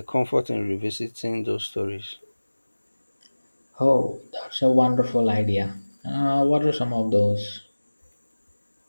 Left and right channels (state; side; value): inverted; both; correlation -1.00